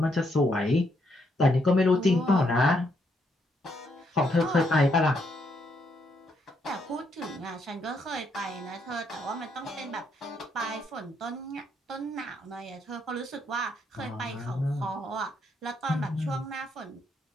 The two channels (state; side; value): normal; both; correlation 0.75